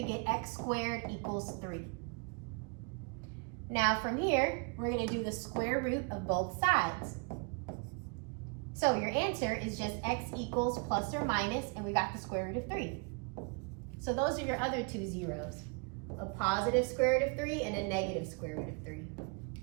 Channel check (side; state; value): left; quieter; 34.2 dB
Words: get x squared equals 3. Now from here, we're going to do the square root of both sides. So your answer is just x equals plus or minus, and we got the square root of 3. So those are your other two zeros, a positive square root of 3 and a negative square root of 3.